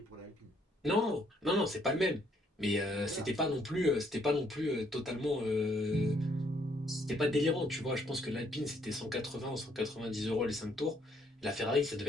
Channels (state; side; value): normal; both; correlation 0.69